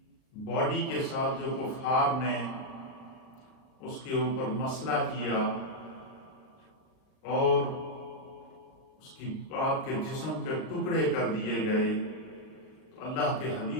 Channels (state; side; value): late; right; 38 ms